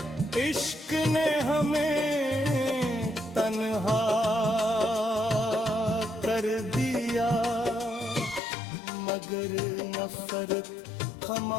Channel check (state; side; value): drops out; right; at 8.4 s